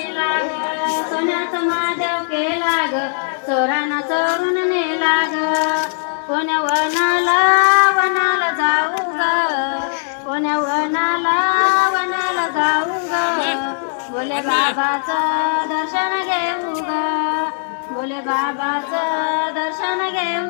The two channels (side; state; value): right; silent; 67 dB below the other